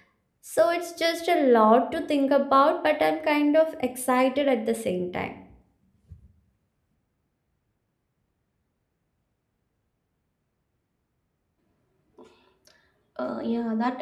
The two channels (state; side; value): identical; both; correlation 1.00